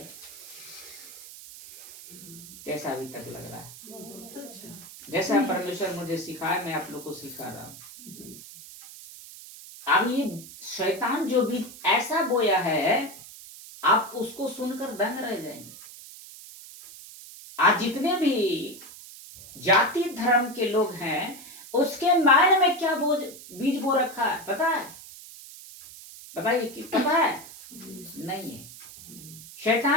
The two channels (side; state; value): right; noise; hiss, 16 dB below the sound